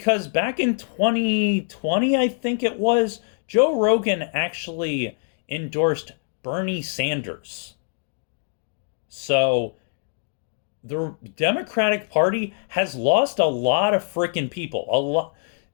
back in 2020, I think it was, Joe Rogan actually endorsed Bernie Sanders. So the Democratic Party has lost a lot of freaking people. A lot,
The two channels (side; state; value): right; silent; digital silence